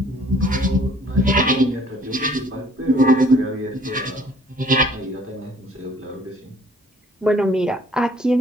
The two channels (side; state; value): both; normal; correlation 0.57